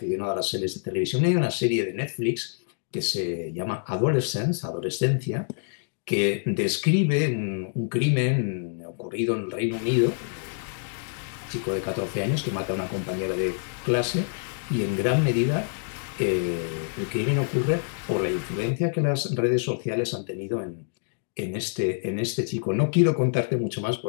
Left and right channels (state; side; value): silent; right; digital silence